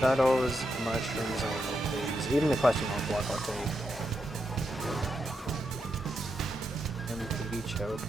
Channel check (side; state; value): both; normal; correlation 0.84